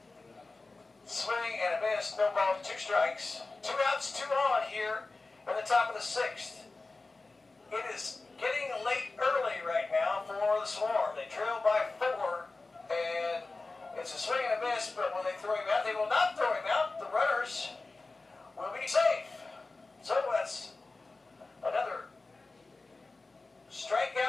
Swing and a miss, no ball, 2 strikes. 2 outs, 2 on here in the top of the 6th. It is getting late early right now for the Swarm. They trail by 4, and it's a swing and a miss, but when they throw him out, they will not throw him out. The runners will be safe. So that's another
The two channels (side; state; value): right; quieter; 3.5 dB